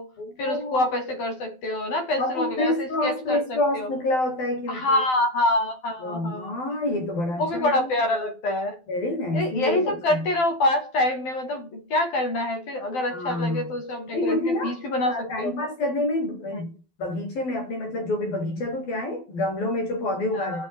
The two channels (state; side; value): late; right; 12 ms